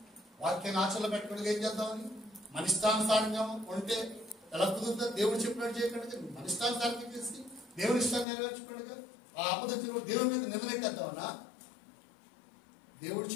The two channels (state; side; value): drops out; right; at 8.2 s